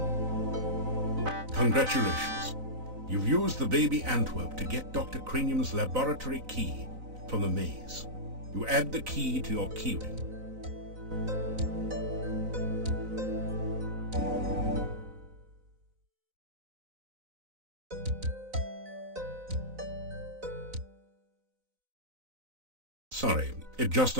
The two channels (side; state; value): left; late; 4.0 ms